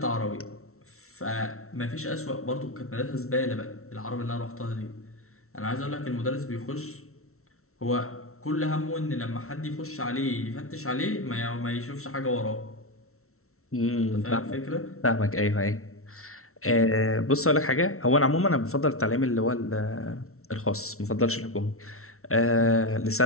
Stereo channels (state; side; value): late; right; 0.63 ms